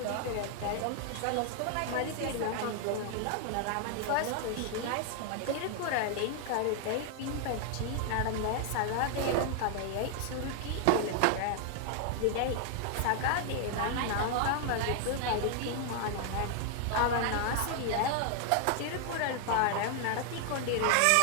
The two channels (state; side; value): different; both; correlation 0.00